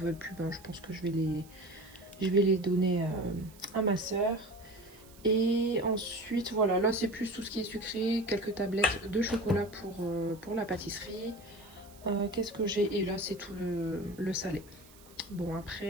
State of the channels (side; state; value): right; noise; hiss, 24 dB below the sound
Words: plus. Ben, je pense que je vais les donner à ma soeur. Et ensuite, voilà, là c'est plus tout ce qui est sucré, quelques tablettes de chocolat pour la pâtisserie. Qu'est-ce que j'ai? Et là c'est tout le salé. Bon